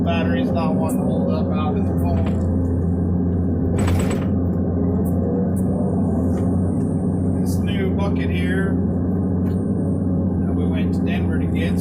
Battery's not wanting to hold up out in the phone. This new bucket here that we went to Denver to get,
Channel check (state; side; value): identical; both; correlation 1.00